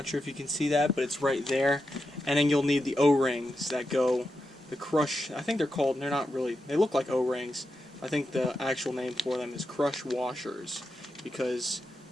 sure if you can see that, but it's right there. And then you'll need the O-rings that go, the crush, I think they're called, they're not really, they look like O-rings. I think the actual name for them is crush washers, because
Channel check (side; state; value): both; normal; correlation 0.88